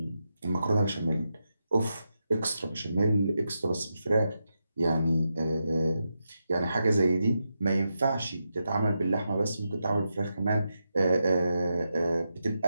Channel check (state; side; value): inverted; both; correlation -0.87